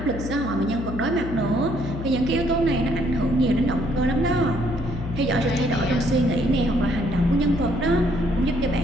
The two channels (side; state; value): left; noise; hum, 7 dB below the sound